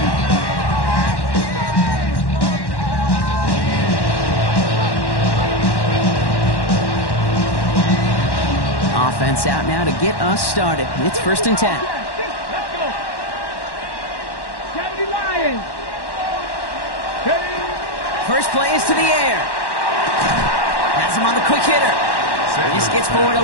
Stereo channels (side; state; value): right; late; 1.1 ms